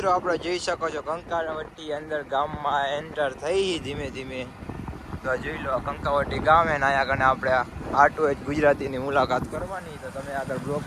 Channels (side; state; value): both; identical; correlation 1.00